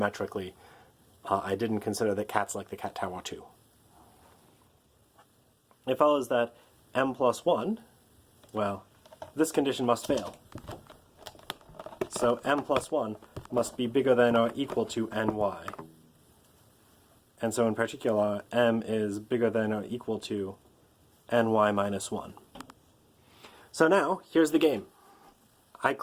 I didn't consider that cats like the cat tower too. It follows that m plus 1, well, this condition must fail. So m plus 1 must be bigger than or equal to ny. And so in particular, m is bigger than or equal to ny minus 1. So now, here's the game. I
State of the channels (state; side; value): identical; both; correlation 1.00